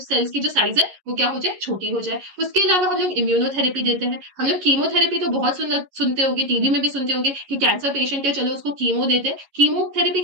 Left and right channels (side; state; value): left; late; 11 ms